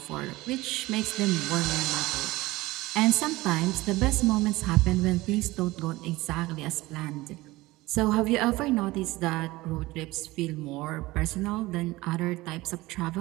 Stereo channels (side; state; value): left; quieter; 19.6 dB